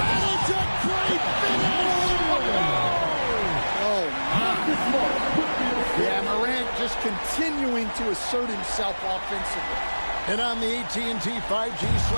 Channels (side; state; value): both; inverted; correlation -1.00